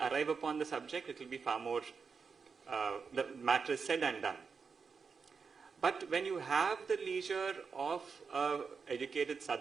upon the subject, it will be far more, the matter is said and done. But when you have the leisure of educated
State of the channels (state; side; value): quieter; left; 5.4 dB